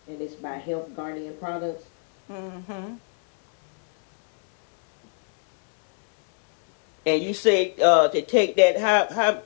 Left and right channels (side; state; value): right; silent; digital silence